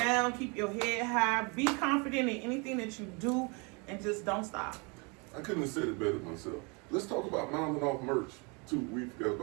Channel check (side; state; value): left; quieter; 31.2 dB